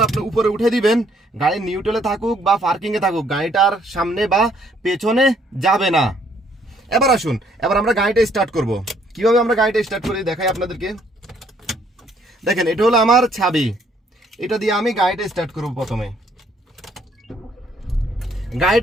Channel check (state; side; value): normal; both; correlation 0.66